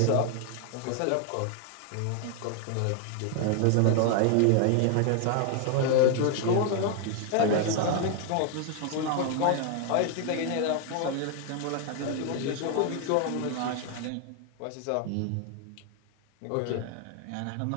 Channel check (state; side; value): different; both; correlation 0.00